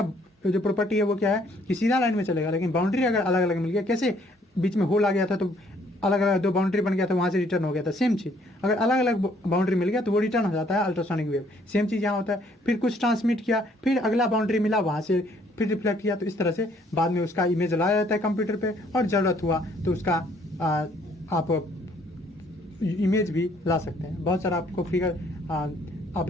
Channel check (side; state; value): both; normal; correlation 0.64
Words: जो प्रॉपर्टी है वो क्या है कि सीधा लाइन में चलेगा, लेकिन बाउंड्री अगर अलग अलग मिल गया, कैसे बीच में होल आ गया था तो अलग अलग दो बाउंड्री बन गया था, वहाँ से रिटर्न हो गया था, सेम चीज़ अगर अलग अलग बाउंड्री मिल गया तो वो रिटर्न हो जाता है अल्ट्रासोनिक वेव। सेम चीज़ यहाँ होता है, फिर कुछ ट्रांसमिट किया, फिर अगला बाउंड्री मिला, वहाँ से फिर रिफ्लेक्ट किया, तो इस तरह से बाद में उसका इमेज लाया जाता है कंप्यूटर पे, और ज़रूरत हुआ तो उसका आप इमेज भी ला सकते हैं। बहुत सारा आपको फिगर आप